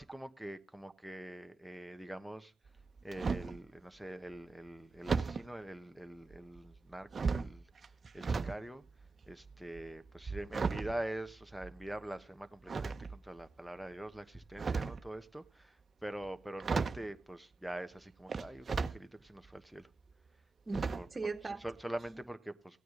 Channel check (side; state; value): left; quieter; 3.3 dB